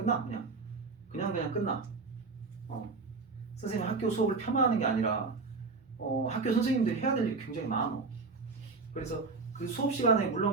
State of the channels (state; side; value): quieter; left; 4.1 dB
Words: 그냥 끝나. 선생님 학교 수업을 폄하하는 게 아니라 학교 선생님들이 해야 될 일이 굉장히 많어. 그래서 그 수업 시간에